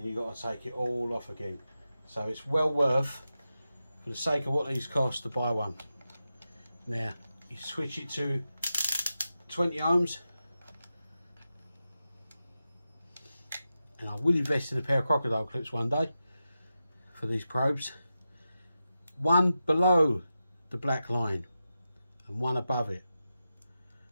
you've got to take it all off again. So it's well worth, for the sake of what these cost, to buy one. Now you switch it to 20 ohms, and I will invest in a pair of crocodile clips one day for these probes. One below the black line and one above it.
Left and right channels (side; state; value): both; inverted; correlation -0.91